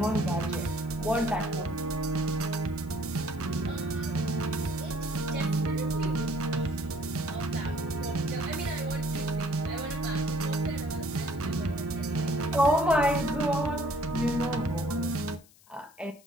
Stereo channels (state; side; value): noise; left; hiss, 27 dB below the sound